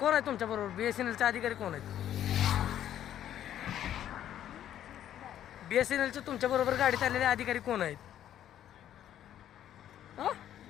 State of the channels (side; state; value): right; quieter; 11.1 dB